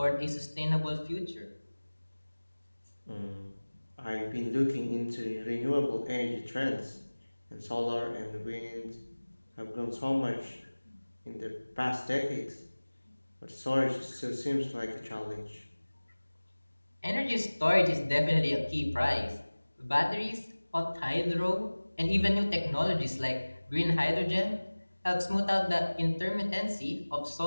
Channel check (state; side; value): inverted; both; correlation -1.00